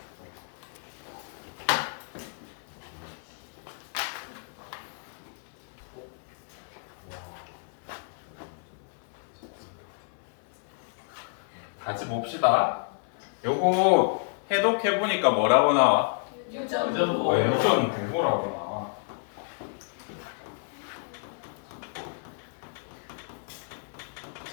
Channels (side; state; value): right; silent; 58 dB below the other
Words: 같이 봅시다. 요거 해독해 보니까 뭐라고 나와? 유전 부호라고 나와.